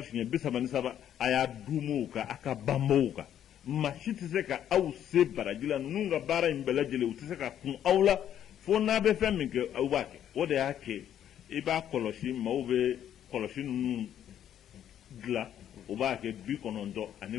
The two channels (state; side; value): quieter; right; 10.3 dB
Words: shinya bisa manisaba aya dumuka aka bamboka mashiti seka au se barajila nunga bara imbelajile utiseka kun aula fo na be femi ke awake ode yake iba koloshi maube koloshi nun gla ubake bi konondo